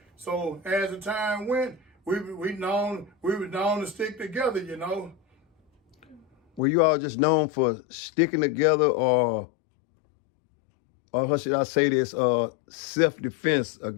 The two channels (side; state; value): right; drops out; at 6.6 s